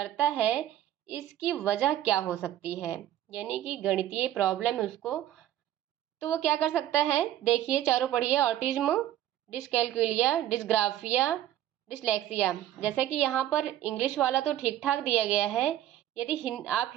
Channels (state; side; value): quieter; left; 12.5 dB